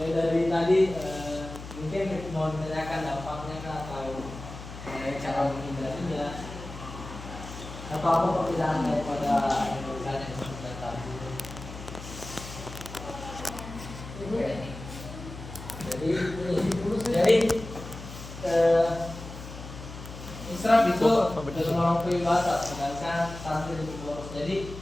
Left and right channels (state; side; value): noise; left; hum, 12 dB below the sound